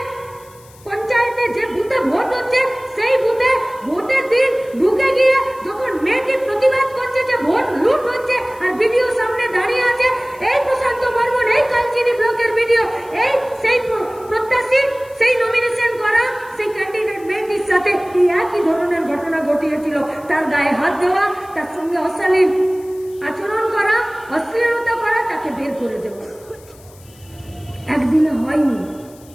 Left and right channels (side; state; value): left; noise; hiss, 25 dB below the sound